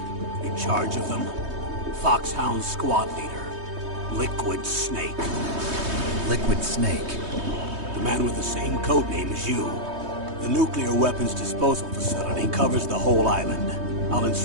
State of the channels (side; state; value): left; late; 3.2 ms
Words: in charge of them, FOXHOUND squad leader, Liquid Snake. Liquid Snake? The man with the same codename as you. The nuclear weapons disposal facility covers the whole island. I'll